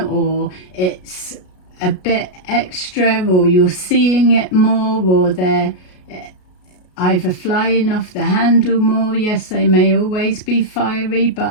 it's a bit extra, or you're seeing it more, or they're either flying off the handle more. Yes, they may always be fiery,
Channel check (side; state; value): right; late; 33 ms